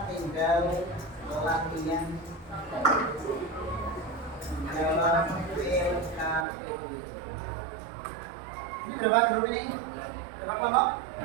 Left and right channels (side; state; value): left; drops out; at 6.5 s